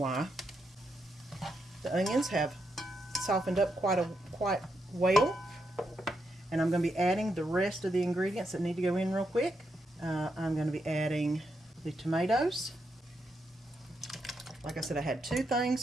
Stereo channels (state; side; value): normal; both; correlation 0.82